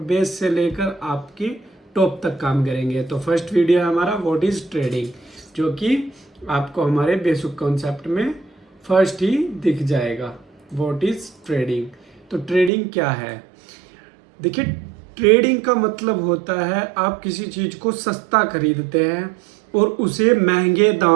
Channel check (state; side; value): drops out; left; at 12.7 s